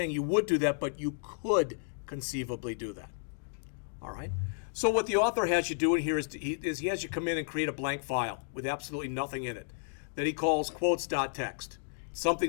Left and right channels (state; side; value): silent; right; digital silence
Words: you would do that, but you could conceivably do that. All right? So what the author has you do in here is he has you come in and create a blank file with absolutely nothing in it that he calls quotes.txt, something